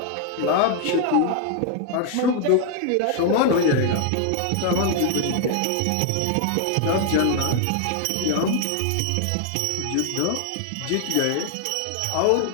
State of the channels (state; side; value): different; both; correlation 0.00